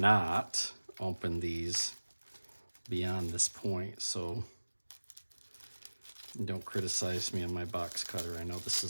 opened these beyond this point, so don't criticize me on my box cutter. I know this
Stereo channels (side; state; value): both; inverted; correlation -1.00